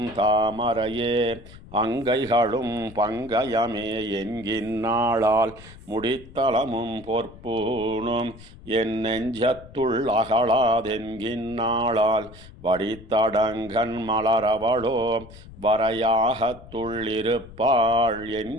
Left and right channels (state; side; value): noise; left; rumble, 19 dB below the sound